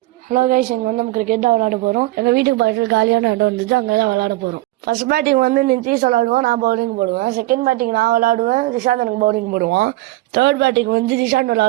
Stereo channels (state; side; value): quieter; left; 19.0 dB